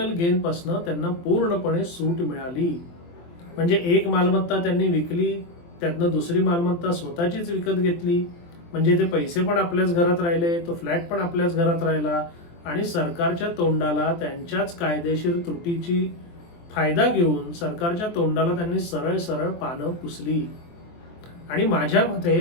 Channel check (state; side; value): late; right; 23 ms